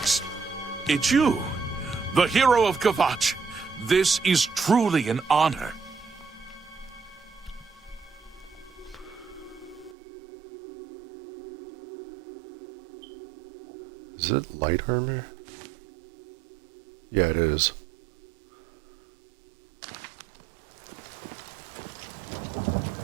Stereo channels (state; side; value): drops out; left; at 10.0 s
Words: It's you, the hero of Kvatch. This is truly an honor. Is it light armor? Yeah, it is.